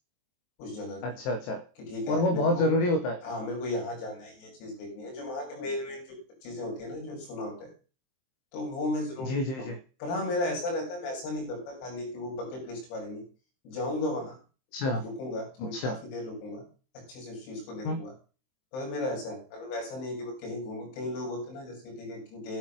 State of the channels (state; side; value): late; right; 23 ms